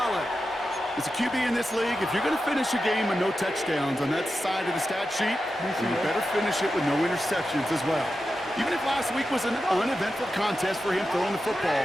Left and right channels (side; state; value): both; normal; correlation 0.91